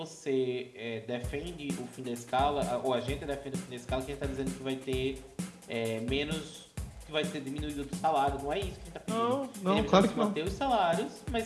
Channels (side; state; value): both; identical; correlation 1.00